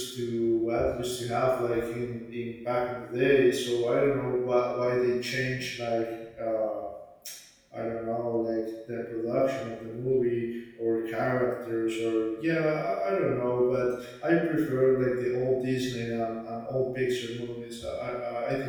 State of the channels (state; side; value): identical; both; correlation 1.00